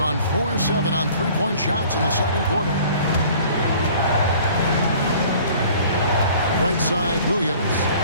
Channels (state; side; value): inverted; both; correlation -0.50